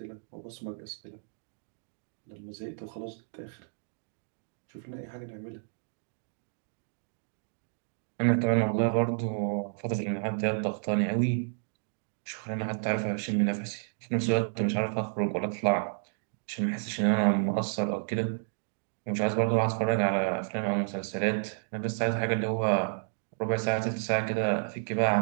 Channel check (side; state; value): left; silent; digital silence